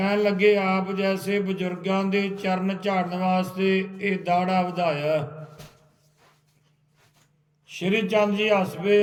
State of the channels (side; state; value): both; identical; correlation 1.00